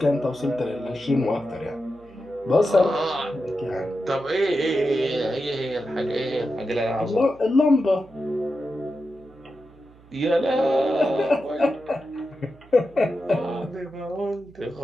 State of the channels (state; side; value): noise; right; hum, 25 dB below the sound